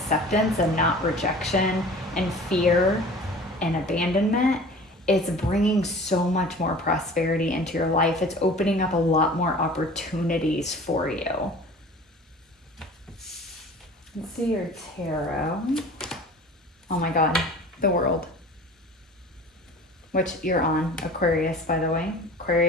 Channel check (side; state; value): both; normal; correlation 0.43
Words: and not rejection and fear and abandonment, it's bringing so much more prosperity into your life. It's opening up a lot more opportunities for you. Let's see your tarot. Oh my god, the World. Which you're on, Aquarius, by the way.